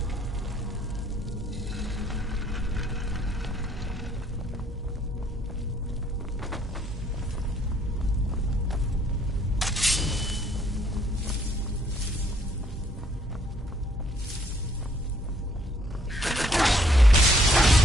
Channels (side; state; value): both; normal; correlation 0.66